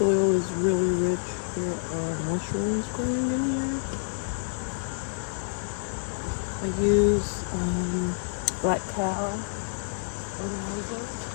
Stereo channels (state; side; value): silent; right; digital silence